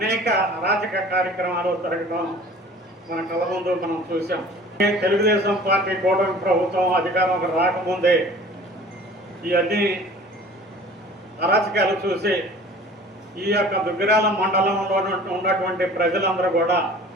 అరాచక కార్యక్రమాలు జరగడం మన కళ్ళ ముందు మనం చూసాం. తెలుగుదేశం పార్టీ కూటమి ప్రభుత్వం అధికారంలోకి రాకముందే ఈ అన్ని అరాచకాలు చూసి ఈ యొక్క దుగ్గిరాల మండలంలో ఉన్నటువంటి ప్రజలందరూ కూడా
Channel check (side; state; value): both; normal; correlation 0.46